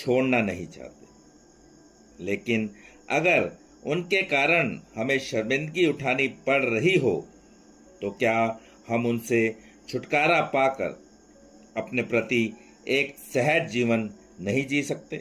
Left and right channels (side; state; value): both; identical; correlation 1.00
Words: नहीं चाहते। लेकिन अगर उनके कारण हमें शर्मिंदगी उठानी पड़ रही हो तो क्या हम उनसे छुटकारा पाकर अपने प्रति एक सहज जीवन नहीं जी